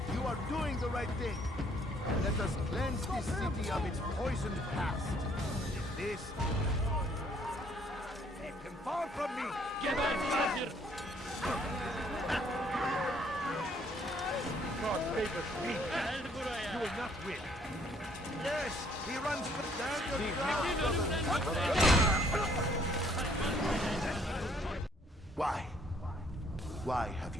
you are doing the right thing. Let us cleanse this city of its poisoned past. This... Keep him far from me! Get out, Major! God favors me. You will not win. Yes, he runs down your Why? Why have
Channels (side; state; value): both; normal; correlation 0.64